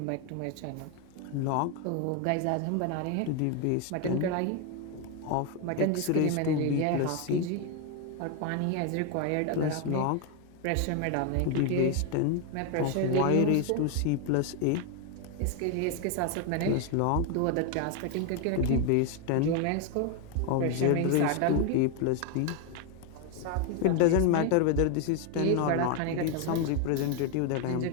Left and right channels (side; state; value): both; different; correlation 0.01